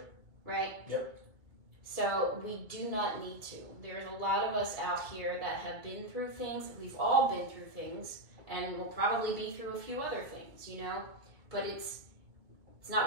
Right? Yep. So we do not need to. There's a lot of us out here that have been through things. We've all been through things, and we'll probably be through a few other things, you know? But it's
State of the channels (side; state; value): left; late; 2.2 ms